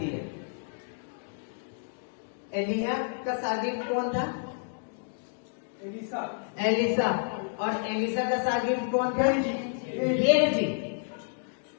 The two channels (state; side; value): silent; right; digital silence